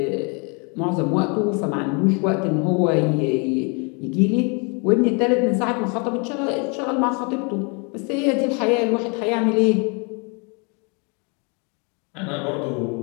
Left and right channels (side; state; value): right; quieter; 33.9 dB